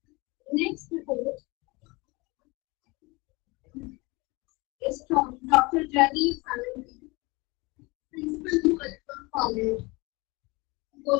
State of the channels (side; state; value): right; quieter; 25.2 dB